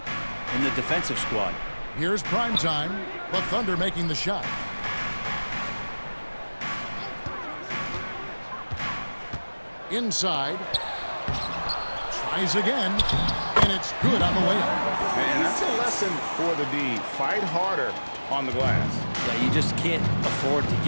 in the defensive squad. Here's prime time. The Thunder making the shot. Inside. Tries again. And it's good on the way up. And that's a lesson for the D. Fight harder on the glass. Yeah, you just can't afford to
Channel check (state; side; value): inverted; both; correlation -1.00